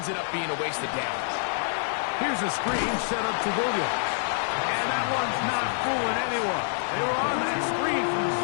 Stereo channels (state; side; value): silent; right; digital silence